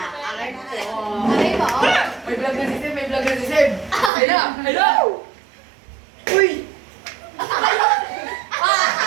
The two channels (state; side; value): drops out; left; at 4.1 s